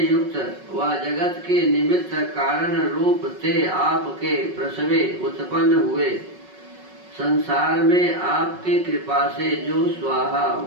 युक्त व जगत के निमित्त कारण रूप ते आपके प्रसवे उत्पन्न हुए। संसार में आपके कृपा से जो स्वाहा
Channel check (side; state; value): left; late; 5.4 ms